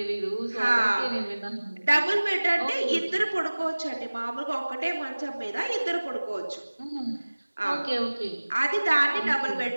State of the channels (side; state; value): both; inverted; correlation -1.00